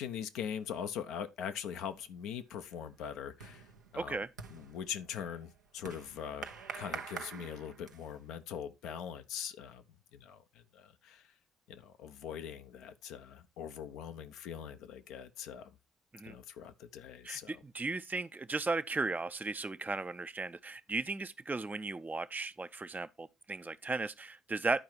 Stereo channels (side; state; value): both; normal; correlation 0.63